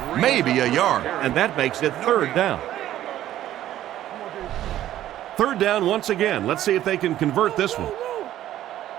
Maybe a yard, and that makes it 3rd down. 3rd down once again. Let's see if they can convert this one.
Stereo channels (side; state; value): left; quieter; 12.8 dB